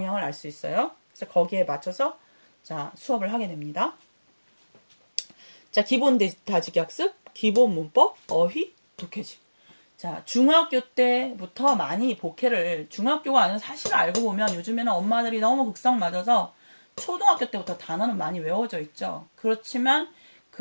알 수 있어요. 그래서 거기에 맞춰서 자, 수업을 하게 됩니다. 자, 기본 다지기 학습, 기본 문법, 어휘, 독해집. 자, 중학교 때부터 많이 복해를 중학교가 아니라 사실 알고 보면 요즘에는 엄마들이 너무 극성 맞아서 초등학교 때부터 단어는 많이 외워져 있죠. 그렇지만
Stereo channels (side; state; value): both; inverted; correlation -1.00